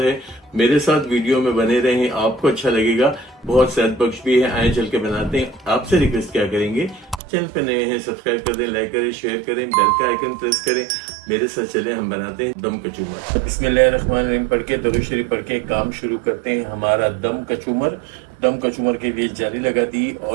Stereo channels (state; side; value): drops out; left; at 7.2 s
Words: है। मेरे साथ वीडियो में बने रहें, आपको अच्छा लगेगा, बहुत सेहत बख्श भी है। आए चल के बनाते हैं। आपसे रिक्वेस्ट क्या करेंगे, चैनल पे नए हैं सब्सक्राइब कर दें, लाइक करें, शेयर करें, बेल का आइकन प्रेस करें। मेरे साथ चले, हम बनाते हैं दम कचूमर। बिस्मिल्लाहिर्रहमानिर्रहीम पढ़ के, दरूद शरीफ पढ़ के काम शुरू करते हैं हमारा दम कचूमर। दम कचूमर के लिए जाली लगा दी